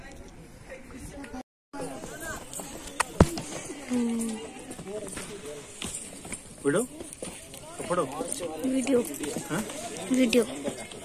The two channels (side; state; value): both; identical; correlation 1.00